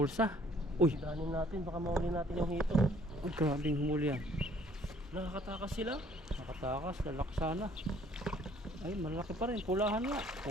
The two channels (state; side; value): normal; both; correlation 0.59